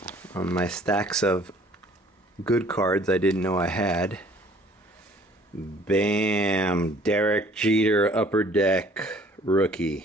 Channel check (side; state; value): both; normal; correlation 0.56